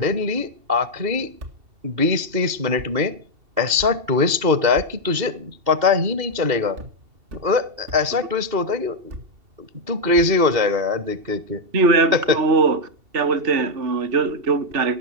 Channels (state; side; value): late; left; 2.7 ms